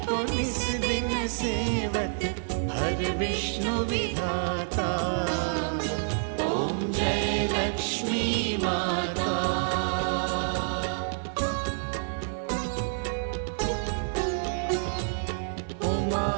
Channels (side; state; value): left; silent; digital silence